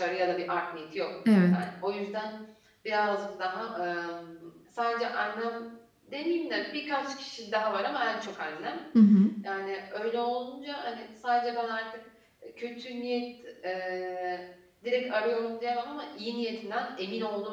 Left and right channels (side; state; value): both; identical; correlation 1.00